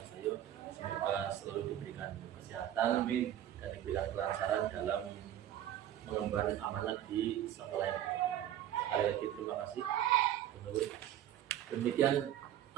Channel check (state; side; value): quieter; left; 11.7 dB